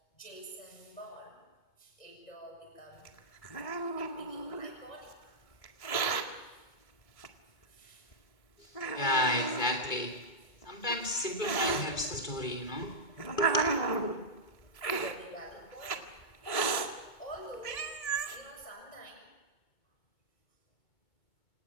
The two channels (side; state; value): right; late; 2.3 ms